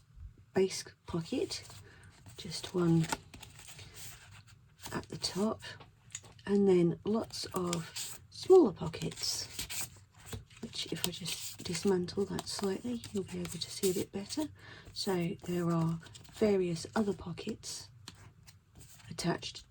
base pocket, just one at the top, and then lots of smaller pockets, which if I just dismantle that slightly, you'll be able to see a bit better. So there are various other pockets attached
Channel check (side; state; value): both; identical; correlation 1.00